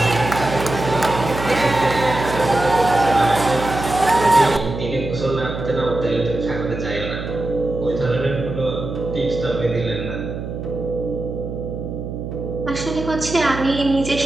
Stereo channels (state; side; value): noise; right; hum, 7 dB below the sound